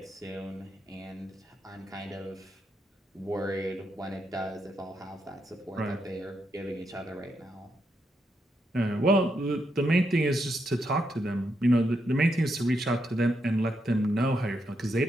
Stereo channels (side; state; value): both; normal; correlation 0.81